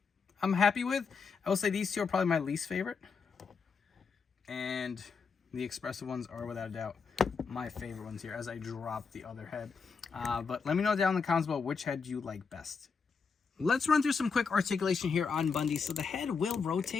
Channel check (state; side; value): quieter; right; 5.4 dB